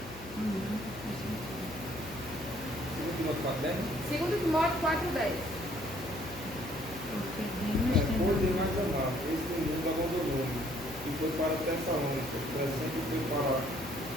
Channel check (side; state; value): left; noise; hum, 16 dB below the sound